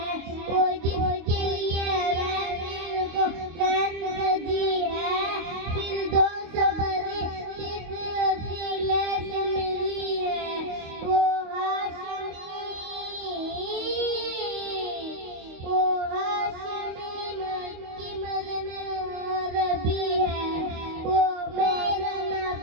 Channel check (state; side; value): late; left; 25 ms